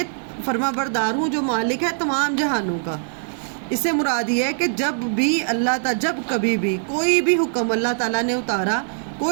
فرما بردار ہوں جو مالک ہے تمام جہانوں کا. اس سے مراد یہ ہے کہ جب بھی اللہ تعالیٰ، جب کبھی بھی کوئی بھی حکم اللہ تعالیٰ نے اتارا،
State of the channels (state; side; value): silent; left; digital silence